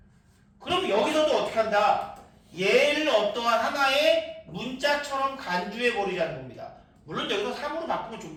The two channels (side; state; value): both; identical; correlation 1.00